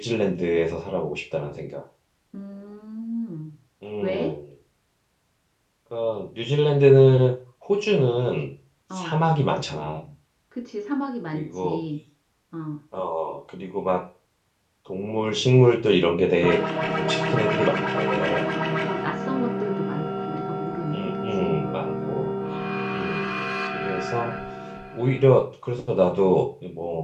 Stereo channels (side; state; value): both; identical; correlation 1.00